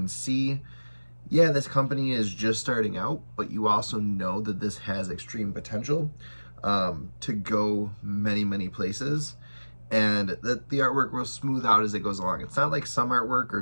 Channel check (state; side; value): inverted; both; correlation -1.00